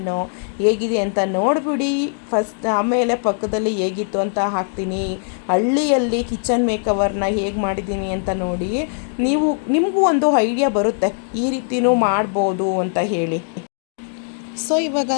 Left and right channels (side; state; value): right; silent; digital silence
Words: ಹೇಗಿದೆ ಅಂತ ನೋಡಿಬಿಡಿ ಫಸ್ಟ್, ಆಮೇಲೆ ಪಕ್ಕದಲ್ಲಿ ಹೇಗಿತ್ತು ಅಂತ ಹಾಕ್ತೀನಿ. ಹಳ್ಳಿಯಲ್ಲಿ ಕಿಚನ್ ಮೇಕವರ್ನ ಹೇಗೆ ಮಾಡಿದ್ದೀನಿ ಅಂತ ನೋಡಿ, ನಿಮಗೂ ಒಂದು ಐಡಿಯಾ ಬರುತ್ತೆ ಈ ರೀತಿಯೂ ಮಾಡ್ಬೋದು ಅಂತ ಹೇಳಿ. ಸೊ ಇವಾಗ